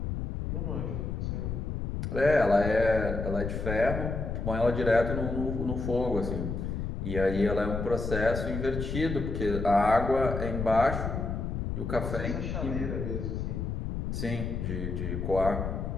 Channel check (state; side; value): noise; left; rumble, 3 dB below the sound